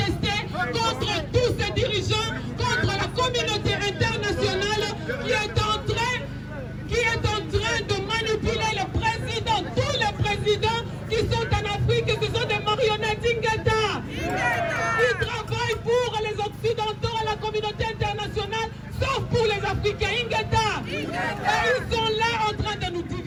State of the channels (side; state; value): both; identical; correlation 1.00